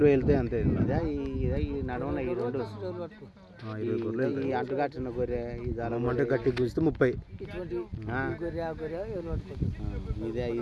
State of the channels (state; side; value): identical; both; correlation 1.00